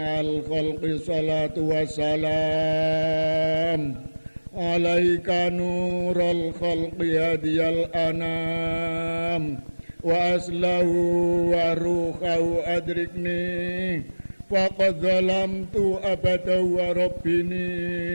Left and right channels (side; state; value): both; inverted; correlation -1.00